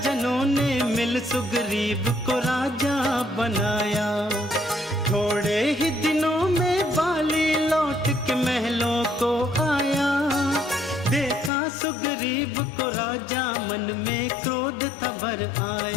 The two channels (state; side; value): drops out; right; at 11.5 s